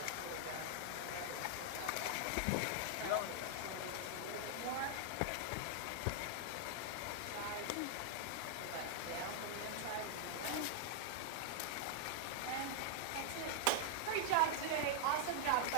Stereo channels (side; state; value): both; different; correlation -0.01